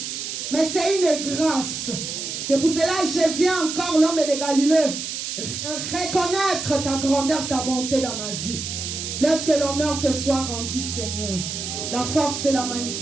mais c'est une grâce. C'est pour cela que je viens encore, l'homme de Galilée, reconnaître ta grandeur, ta bonté dans ma vie. Laisse que l'honneur te soit rendu, Seigneur. La force et la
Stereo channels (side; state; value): right; noise; hiss, 5 dB below the sound